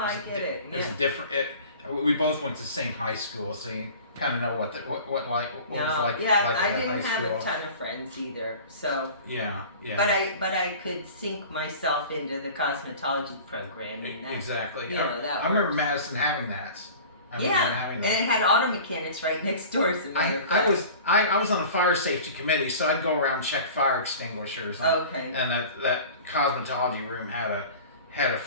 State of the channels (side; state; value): both; inverted; correlation -0.40